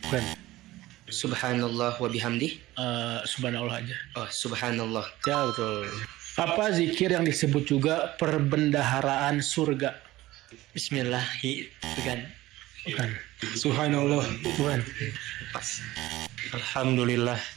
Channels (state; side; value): quieter; left; 17.1 dB